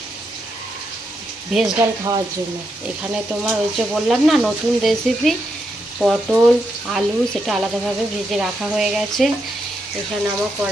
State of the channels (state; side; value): normal; both; correlation 0.82